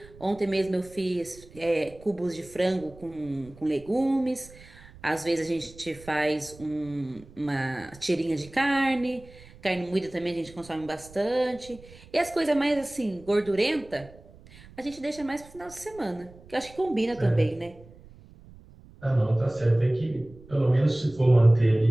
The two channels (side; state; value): right; noise; rumble, 22 dB below the sound